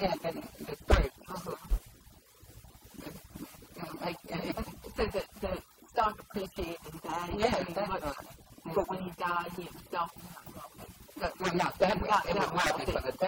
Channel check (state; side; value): identical; both; correlation 1.00